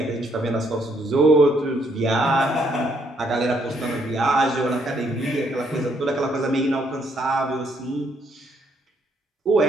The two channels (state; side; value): normal; both; correlation 0.71